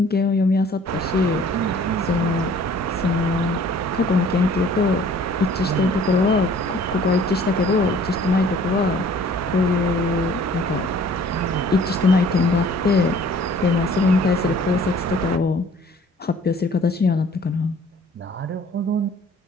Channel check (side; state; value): both; normal; correlation 0.53